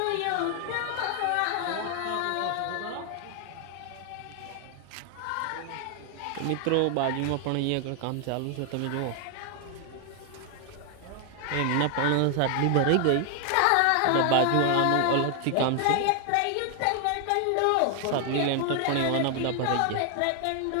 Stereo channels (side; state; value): both; different; correlation 0.00